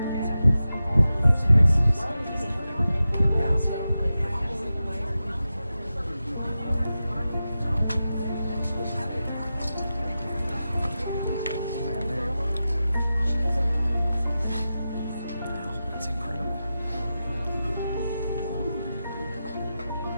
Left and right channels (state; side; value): inverted; both; correlation -0.92